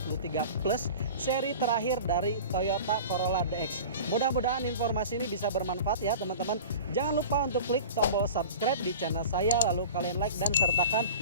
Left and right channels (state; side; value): inverted; both; correlation -0.37